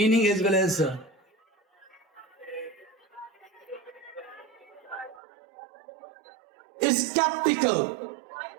as well as skeptical.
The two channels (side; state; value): left; drops out; at 5.2 s